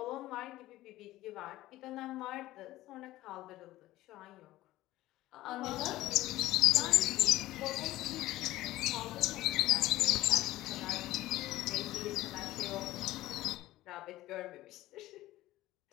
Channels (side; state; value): right; quieter; 16.2 dB